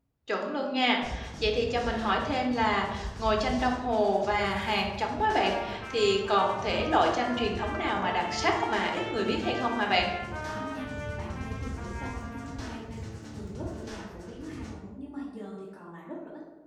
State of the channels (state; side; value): identical; both; correlation 1.00